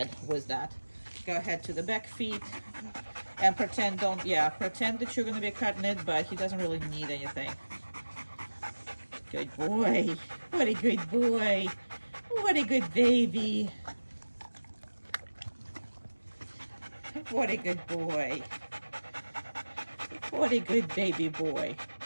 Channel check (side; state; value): both; inverted; correlation -1.00